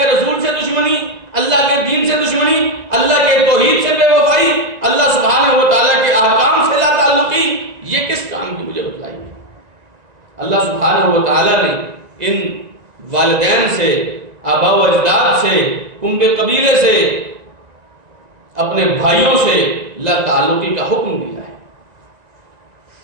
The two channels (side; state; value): left; late; 2.0 ms